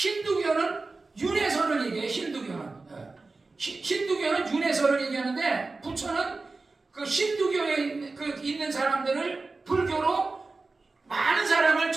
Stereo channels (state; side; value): quieter; left; 3.7 dB